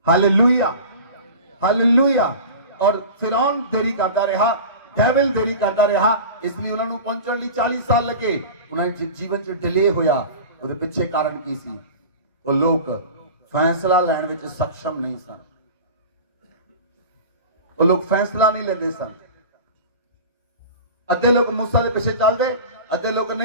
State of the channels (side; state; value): both; inverted; correlation -0.35